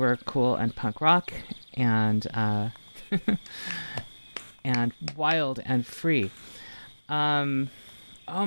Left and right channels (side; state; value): both; inverted; correlation -1.00